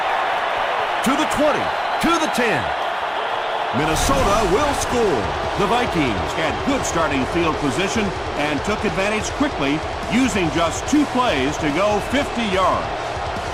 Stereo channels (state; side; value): identical; both; correlation 1.00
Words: To the 20, to the 10. Minnesota will score. The Vikings Had good starting field position and took advantage quickly, using just 2 plays to go 50 yards.